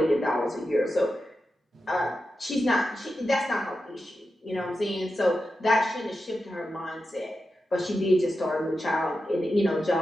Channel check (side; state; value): both; normal; correlation 0.90